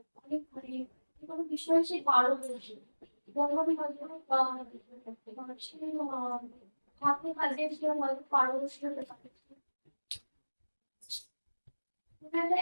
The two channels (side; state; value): both; inverted; correlation -1.00